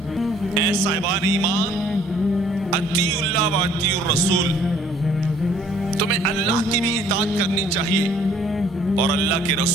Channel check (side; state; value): both; normal; correlation 0.59